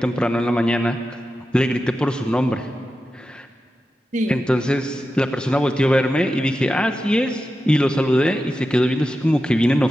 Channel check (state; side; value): normal; both; correlation 0.91